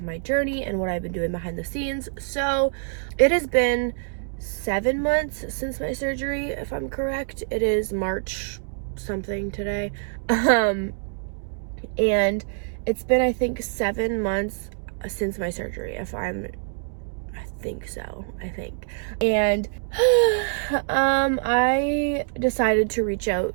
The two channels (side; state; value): left; silent; digital silence